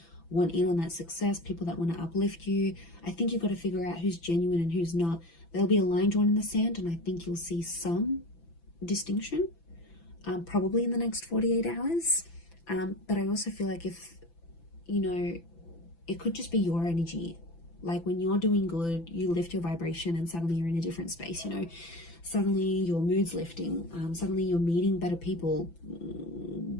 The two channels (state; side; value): late; right; 5.9 ms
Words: want in on that success, people that want to uplift you. I think you've got to figure out who's genuine and who's not. There'll be a line drawn in the sand, and I think you'll see some distinction, probably in the next 48 hours. But I also feel like if, you know, it could just be your energy. Like when you're doing good, you lift your vibration and suddenly you're in a different space, you know. Suddenly your mood's lifting. Suddenly you're meeting better people.